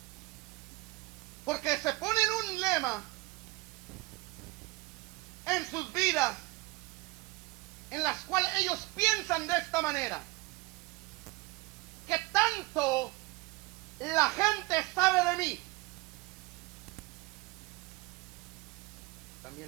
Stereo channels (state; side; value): quieter; left; 22.9 dB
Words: porque se ponen un lema en sus vidas en las cuales ellos piensan de esta manera: que tanto la gente sabe de mí.